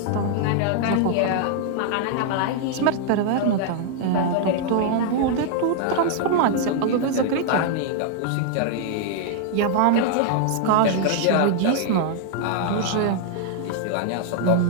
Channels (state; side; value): different; both; correlation 0.00